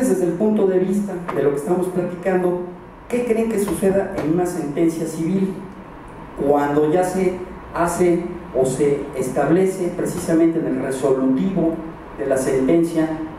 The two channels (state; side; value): identical; both; correlation 1.00